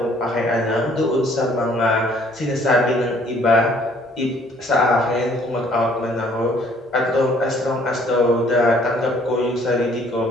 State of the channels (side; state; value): both; normal; correlation 0.60